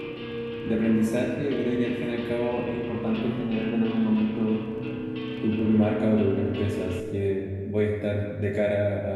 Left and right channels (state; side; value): identical; both; correlation 1.00